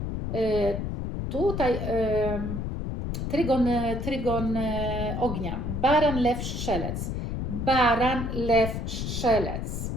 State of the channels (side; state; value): left; noise; rumble, 3 dB below the sound